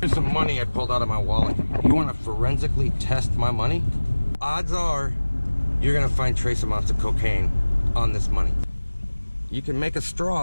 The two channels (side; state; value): both; inverted; correlation -1.00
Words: some money I pulled out of my wallet. You want to forensically test my money? Odds are you're gonna find trace amounts of cocaine on this money. You can make a